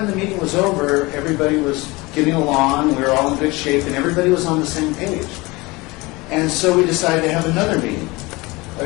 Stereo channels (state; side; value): quieter; right; 23.3 dB